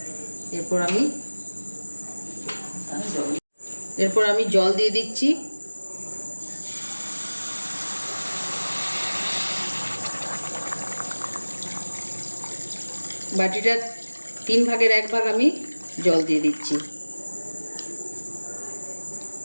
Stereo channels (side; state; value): both; inverted; correlation -1.00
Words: এরপর আমি জল দিয়ে দিচ্ছি। বাটিটার 3 ভাগের 1 ভাগ আমি জল দিয়ে দিচ্ছি।